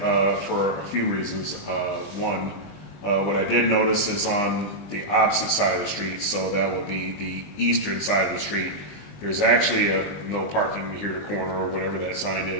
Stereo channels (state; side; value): late; right; 20 ms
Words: for a few reasons. One, what I did notice is on the opposite side of the street, so that would be the eastern side of the street, there's actually a no parking here to corner or whatever that sign